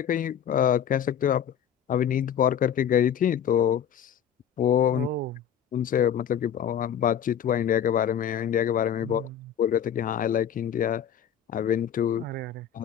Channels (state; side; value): quieter; right; 8.8 dB